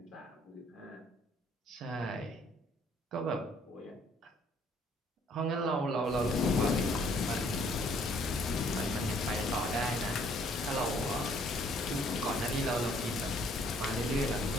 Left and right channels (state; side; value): normal; both; correlation 0.63